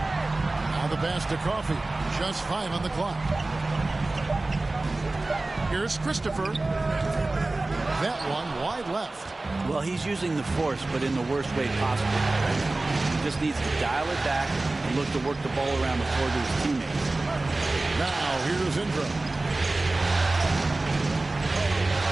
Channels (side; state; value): left; quieter; 3.0 dB